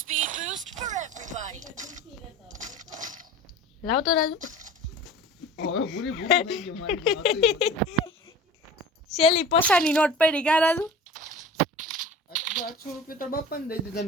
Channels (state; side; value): normal; both; correlation 0.39